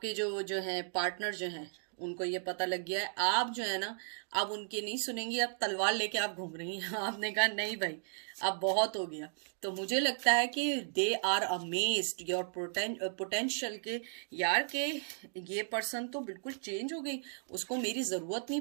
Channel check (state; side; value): silent; left; digital silence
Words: जो है पार्टनर जो हैं उनको ये पता लग गया है, आप जो है ना अब उनकी नहीं सुनेंगी, अब तलवार लेके आप घूम रही हैं। आपने कहा नहीं भाई अब बहुत हो गया। तो मुझे लगता है कि they are amazed your potential के, यार के ये पर्सन तो बिल्कुल चेंज हो गई, उसको मेरी ज़रूरत नहीं